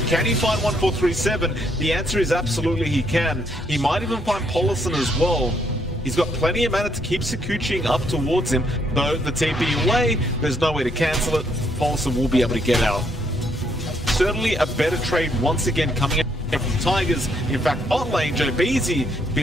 Can he find 1437? The answer is absolutely he can. He might even find Polison as well. He's got plenty of mana to keep Sakuchiing up towards him, though the TP away, there's no way to cancel it. Polison will be able to get out. Certainly a better trade once again coming out from Tigers. In fact, bot lane, Joe Beasy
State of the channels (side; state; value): both; normal; correlation 0.72